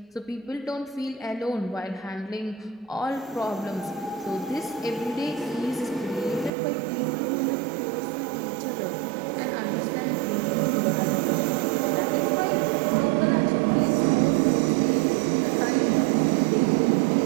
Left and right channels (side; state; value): left; drops out; at 6.5 s